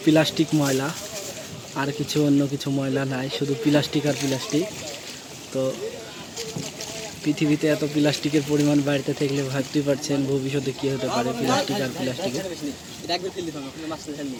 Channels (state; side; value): identical; both; correlation 1.00